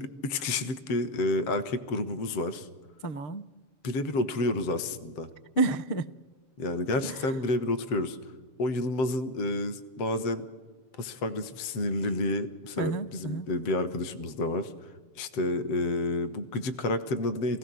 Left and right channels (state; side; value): late; right; 7.7 ms